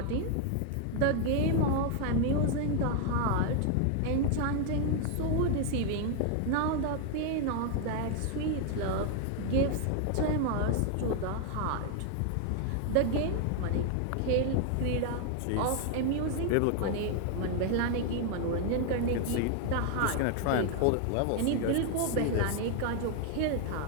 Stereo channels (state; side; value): different; both; correlation 0.00